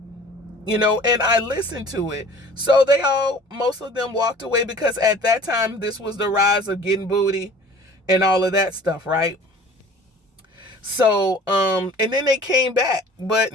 And I listened to it. So most of them walked away, because at that time, this was the rise of getting booty and all of that stuff, right? So, and then they came back, but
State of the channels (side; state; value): both; normal; correlation 0.47